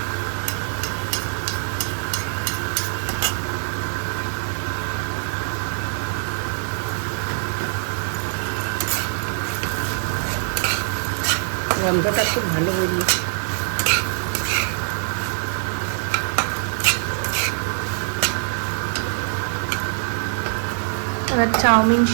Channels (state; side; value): silent; left; digital silence